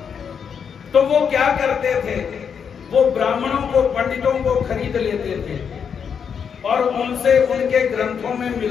तो वो क्या करते थे, वो ब्राह्मणों को, पंडितों को खरीद लेते थे और उनसे उनके ग्रंथों में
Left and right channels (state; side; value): quieter; right; 7.0 dB